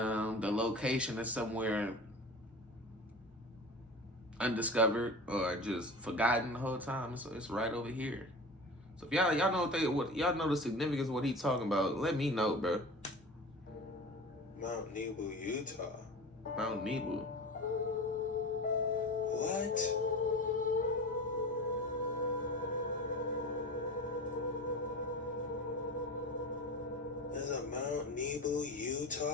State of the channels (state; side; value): normal; both; correlation 0.33